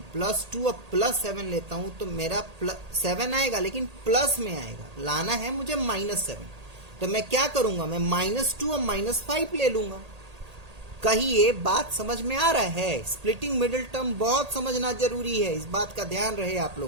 +2 और +7 लेता हूं तो मेरा 7 आएगा, लेकिन प्लस में आएगा। लाना है मुझे -7, तो मैं क्या करूंगा, मैं -2 और -5 ले लूंगा। कहिए बात समझ में आ रहा है। स्प्लिटिंग मिडिल टर्म बहुत समझना जरूरी है, इस बात का ध्यान रहे आप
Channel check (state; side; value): late; left; 1.8 ms